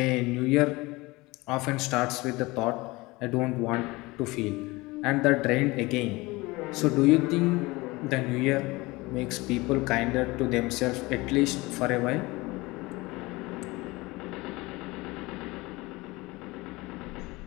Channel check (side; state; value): right; quieter; 22.2 dB